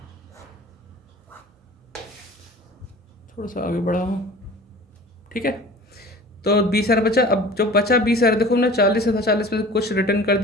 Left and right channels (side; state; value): both; normal; correlation 0.42